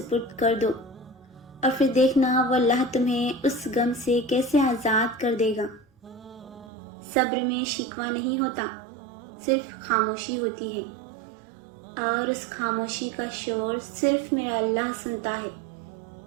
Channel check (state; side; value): drops out; left; at 6.7 s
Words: کر دو اور پھر دیکھنا وہ اللہ تمہیں اس غم سے کیسے آزاد کر دے گا۔ صبر میں شکوہ نہیں ہوتا، صرف خاموشی ہوتی ہے، اور اس خاموشی کا شور صرف میرا اللہ سنتا ہے۔